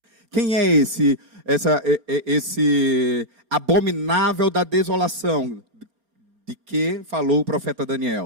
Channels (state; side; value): late; left; 4.9 ms